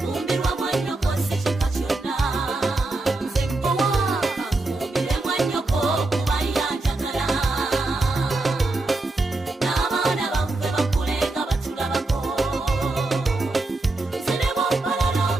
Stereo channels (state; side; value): quieter; left; 3.1 dB